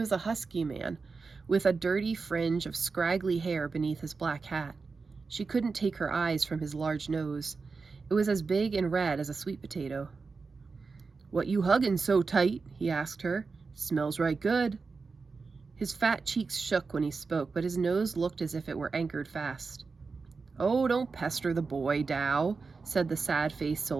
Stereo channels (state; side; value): quieter; left; 4.5 dB